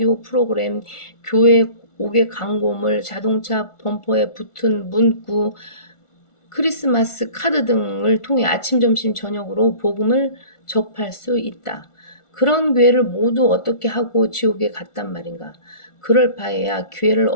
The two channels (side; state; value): right; late; 1.4 ms